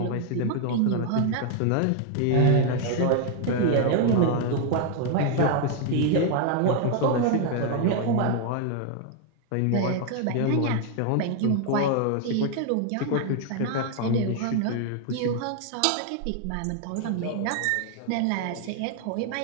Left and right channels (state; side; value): different; both; correlation 0.00